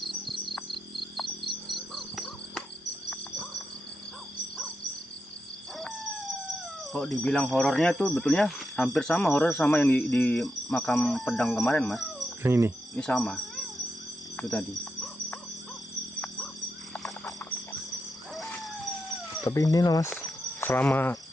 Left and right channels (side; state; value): both; normal; correlation 0.86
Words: Kok dibilang horornya tuh betulnya hampir sama horor sama yang di makam pedang kemarin mas. Yang ini. Ini sama. Itu tadi. Tapi ini lah mas, selama